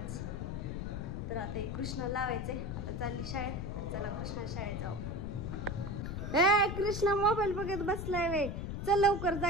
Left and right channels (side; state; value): left; noise; rumble, 4 dB below the sound